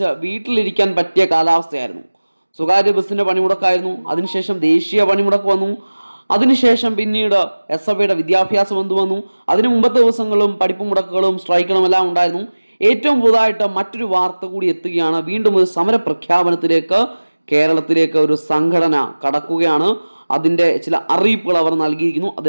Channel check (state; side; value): inverted; both; correlation -1.00